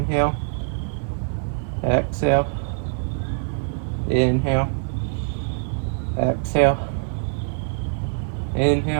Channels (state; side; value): silent; left; 63 dB below the other